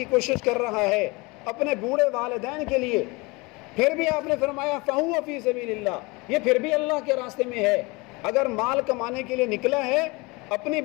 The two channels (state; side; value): quieter; right; 25.6 dB